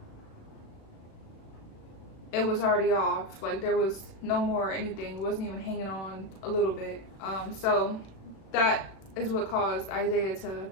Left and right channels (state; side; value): late; right; 36 ms